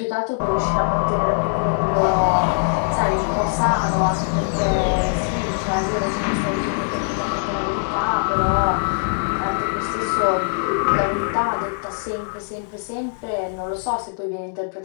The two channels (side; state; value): right; silent; digital silence